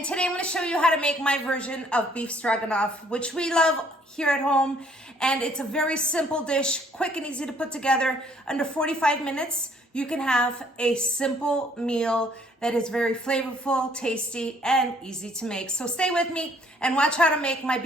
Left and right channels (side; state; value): both; normal; correlation 0.62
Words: today I'm going to show you how to make my version of beef stroganoff, which we love here at home. And it's a very simple dish, quick and easy to put together. Under 45 minutes, you can have a simple meal that is very flavorful, tasty, and easy to make. So stay with me and watch how to make my